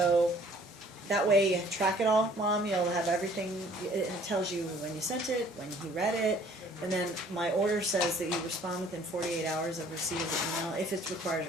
that way you track it all, Mom, you'll have everything, it tells you when you sent it, when he read it, and then my order says that you respond within 48 hours of receipt of the email, if it requires a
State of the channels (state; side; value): normal; both; correlation 0.56